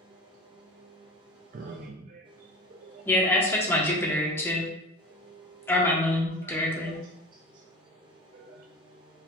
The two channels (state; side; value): normal; both; correlation 0.34